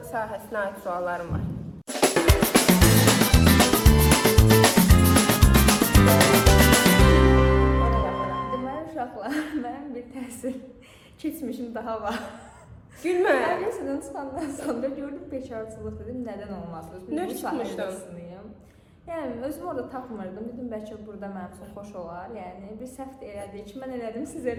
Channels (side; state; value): both; identical; correlation 1.00